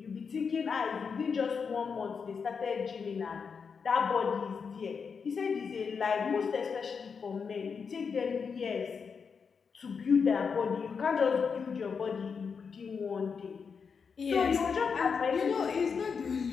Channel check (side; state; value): right; quieter; 5.8 dB